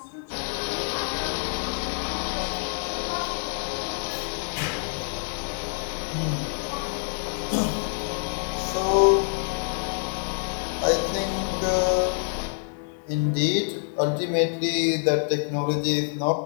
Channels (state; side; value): silent; right; 61 dB below the other